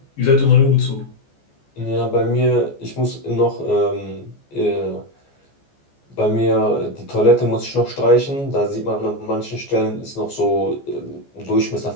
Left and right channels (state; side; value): late; right; 14 ms